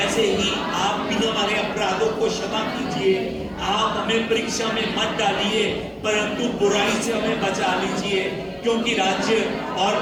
ही आप भी हमारे अपराधों को क्षमा कीजिए। आप हमें परीक्षा में मत डालिए, परंतु बुराई से हमें बचा लीजिए, क्योंकि राज्य और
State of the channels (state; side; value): identical; both; correlation 1.00